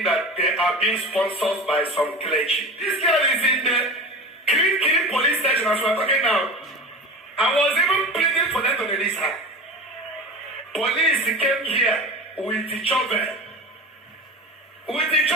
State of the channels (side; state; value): both; normal; correlation 0.32